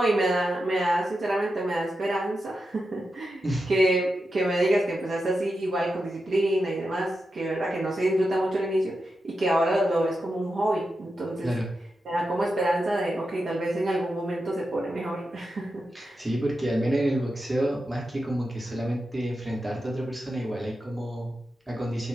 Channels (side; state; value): both; normal; correlation 0.89